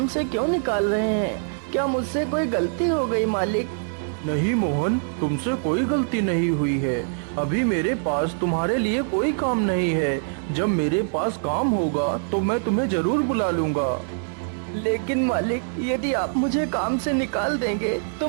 से क्यों निकाल रहे हैं? क्या मुझसे कोई गलती हो गई मालिक? नहीं मोहन, तुमसे कोई गलती नहीं हुई है। अभी मेरे पास तुम्हारे लिए कोई काम नहीं है। जब मेरे पास काम होगा तो मैं तुम्हें जरूर बुला लूंगा। लेकिन मालिक, यदि आप मुझे काम से निकाल देंगे तो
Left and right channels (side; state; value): left; silent; digital silence